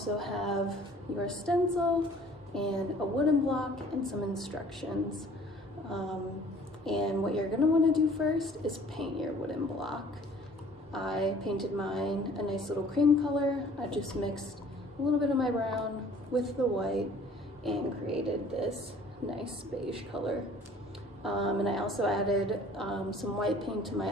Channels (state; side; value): normal; both; correlation 0.52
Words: have your stencil and a wooden block and some instructions. And what you're going to want to do first is paint your wooden block. I painted mine a nice little cream color. I just mixed a little bit of my brown with the white and created this nice beige color. And I also added some white paint to my